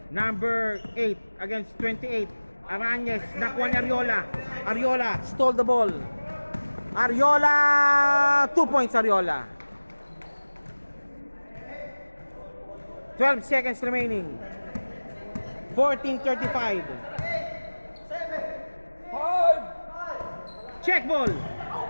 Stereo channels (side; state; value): both; inverted; correlation -1.00